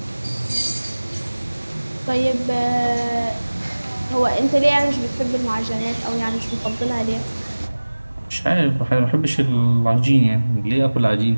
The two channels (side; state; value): both; inverted; correlation -1.00